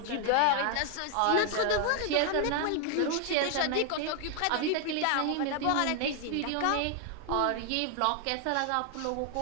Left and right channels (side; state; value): both; different; correlation 0.00